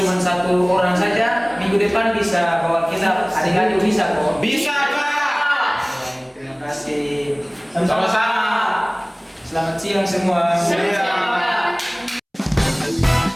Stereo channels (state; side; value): identical; both; correlation 1.00